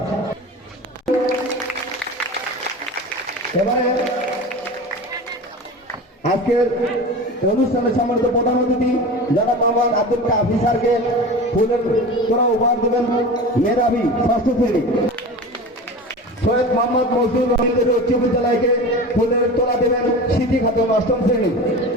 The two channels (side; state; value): both; normal; correlation 0.32